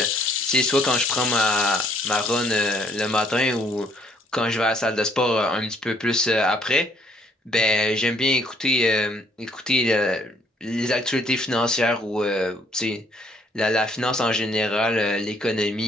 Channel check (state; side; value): normal; both; correlation 0.65